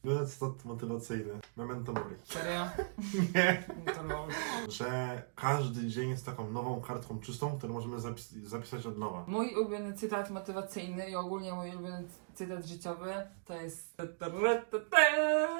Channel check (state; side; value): silent; left; digital silence